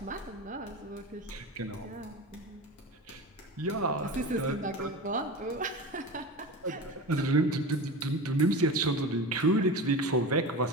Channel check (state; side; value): normal; both; correlation 0.28